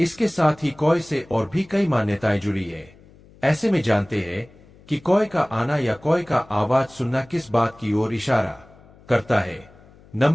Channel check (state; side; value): noise; left; hum, 25 dB below the sound